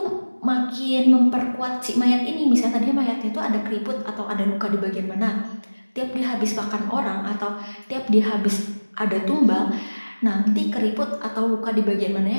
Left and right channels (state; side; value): inverted; both; correlation -1.00